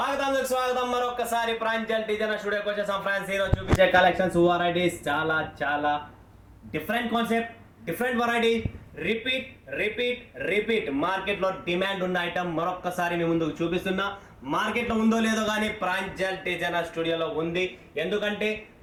మరొకసారి ప్రాంజల్ డిజైన్ స్టూడియోకి వచ్చేసాం ఫ్రెండ్స్. ఈరోజు చూపించే కలెక్షన్స్ వెరైటీస్ చాలా different concept, different variety, repeat మార్కెట్లో డిమాండ్ ఉన్న ఐటమ్ మరొకసారి మీ ముందుకు చూపిస్తున్నా. మార్కెట్లో ఉందో లేదో కానీ ప్రాంజల్ డిజైనర్ స్టూడియోలో ఉంది. ఎందుకంటే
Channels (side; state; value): both; identical; correlation 1.00